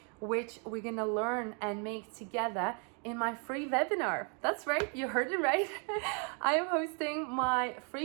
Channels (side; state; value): left; quieter; 37.5 dB